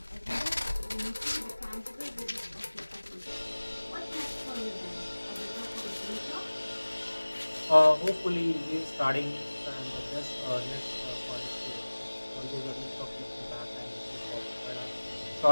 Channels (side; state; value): both; inverted; correlation -1.00